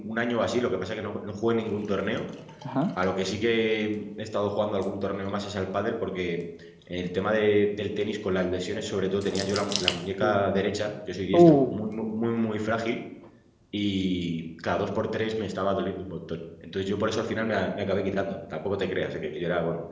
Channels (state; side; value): identical; both; correlation 1.00